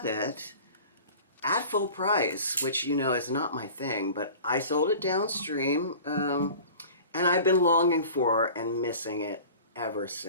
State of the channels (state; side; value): inverted; both; correlation -0.41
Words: it at full price, which, you know, is not my thing, but I sold it downstream, and I've been longing for and missing it ever